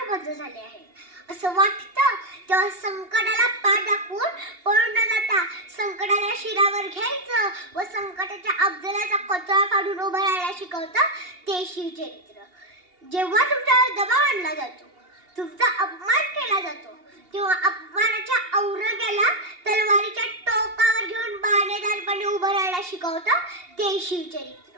बंद झाले आहे असं वाटतं, तेव्हा संकटाला पाठ दाखवून पळून न जाता संकटाला शिरावर घ्यायचं व संकटाच्या अफजलाचा कोथळा काढून उभं राहायला शिकवतं ते शिवचरित्र. जेव्हा तुमच्यावर दबाव आणला जातो, तुमचा अपमान केला जातो, तेव्हा अपमानाच्या औरंग्याला तलवारीच्या टोकावर घेऊन बाणेदारपणे उभं राहायला शिकवतं ते शिवचरित्र.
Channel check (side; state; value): left; late; 2.8 ms